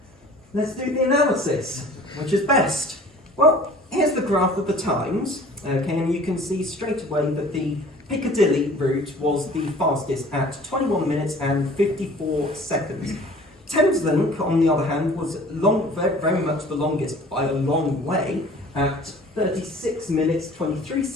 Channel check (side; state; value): both; normal; correlation 0.48